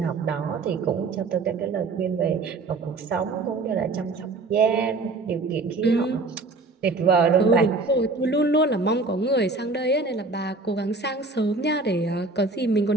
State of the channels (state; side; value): quieter; left; 3.6 dB